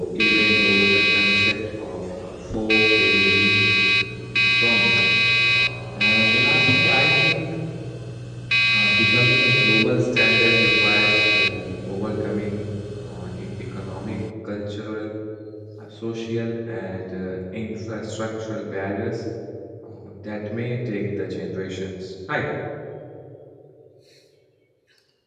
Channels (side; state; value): both; identical; correlation 1.00